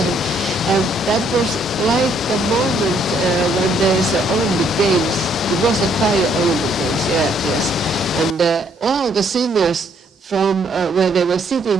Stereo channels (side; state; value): both; normal; correlation 0.68